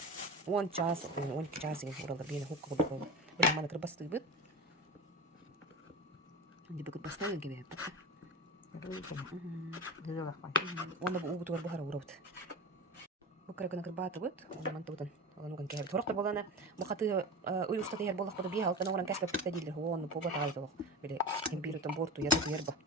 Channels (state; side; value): normal; both; correlation 0.29